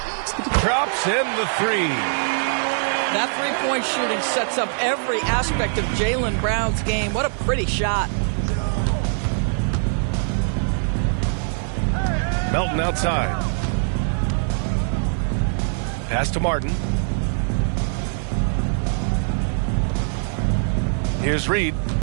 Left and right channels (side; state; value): left; silent; digital silence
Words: Drops in the 3. That three-point shooting sets up every aspect of Jaylen Brown's game. What a pretty shot. Melton outside. Pass to Martin. Here's Reed.